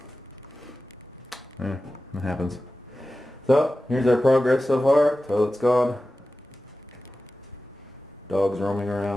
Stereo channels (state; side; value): normal; both; correlation 0.94